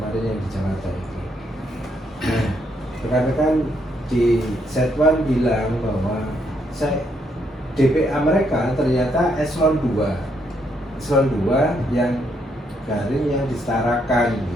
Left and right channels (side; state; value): both; normal; correlation 0.75